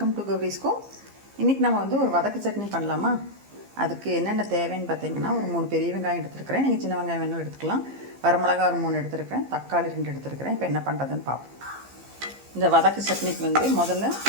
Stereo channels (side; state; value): left; late; 15 ms